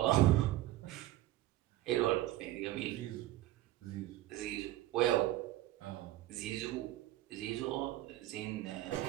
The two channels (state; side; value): quieter; left; 15.6 dB